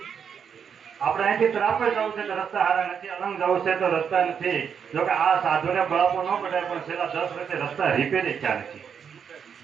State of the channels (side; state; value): left; quieter; 7.2 dB